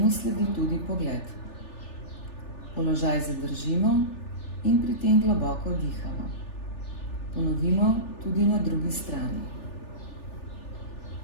sledi tudi pogled. Položaj zadržimo in pri tem globoko dihamo. Ponovimo tudi na drugi strani.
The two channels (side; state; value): right; late; 3.4 ms